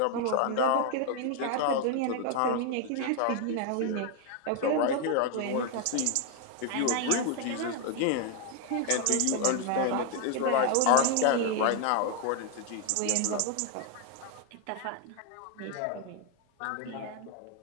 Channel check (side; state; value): both; different; correlation 0.01